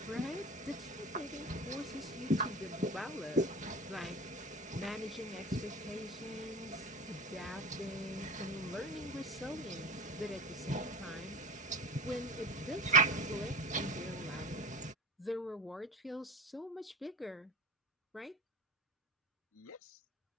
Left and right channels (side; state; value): both; normal; correlation 0.32